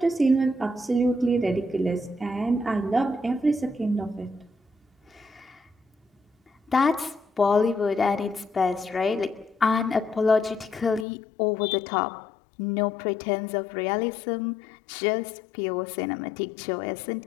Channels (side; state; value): right; drops out; at 11.1 s